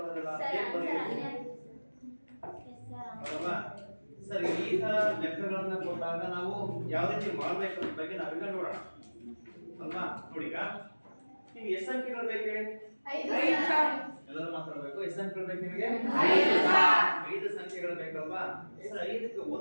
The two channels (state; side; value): inverted; both; correlation -1.00